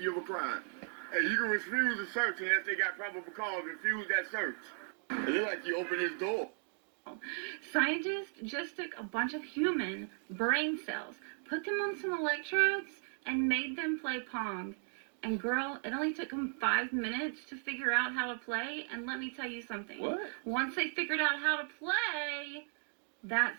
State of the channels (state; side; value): silent; left; 54 dB below the other